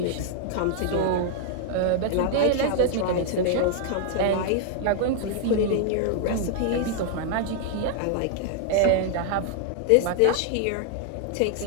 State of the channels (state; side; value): different; both; correlation -0.01